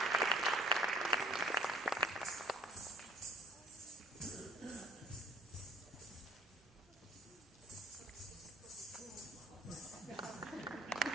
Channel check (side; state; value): both; normal; correlation 0.53